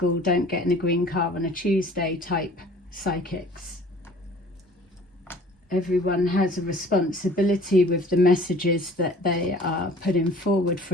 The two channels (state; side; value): normal; both; correlation 0.49